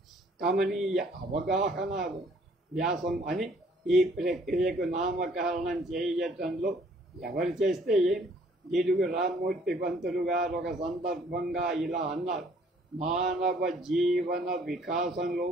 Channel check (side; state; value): both; normal; correlation 0.60